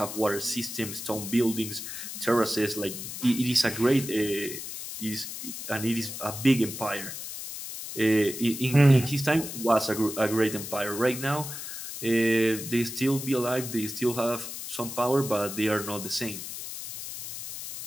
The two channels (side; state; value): left; noise; hiss, 8 dB below the sound